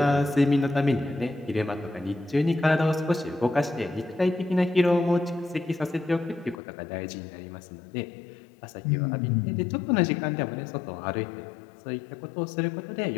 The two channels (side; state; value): right; drops out; at 6.6 s